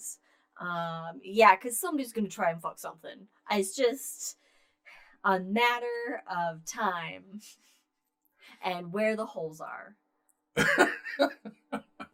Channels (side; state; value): both; identical; correlation 1.00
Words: Because somebody's going to try and fuck something. It's just a matter of time and where the holes are.